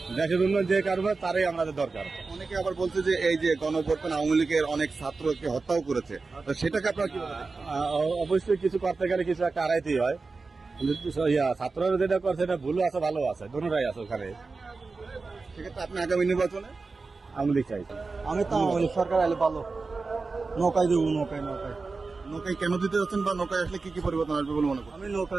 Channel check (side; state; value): left; quieter; 4.0 dB